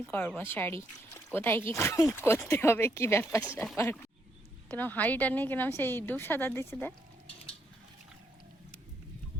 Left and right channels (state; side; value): normal; both; correlation 0.75